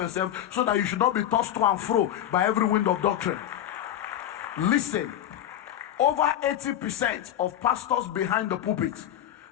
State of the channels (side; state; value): right; quieter; 11.4 dB